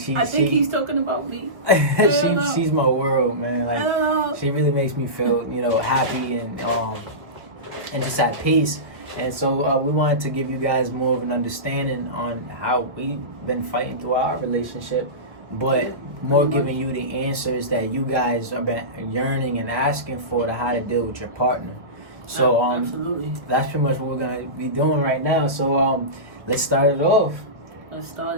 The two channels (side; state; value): left; late; 1.6 ms